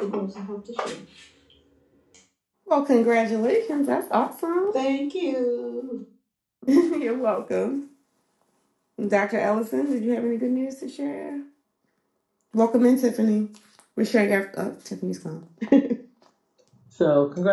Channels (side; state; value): both; identical; correlation 1.00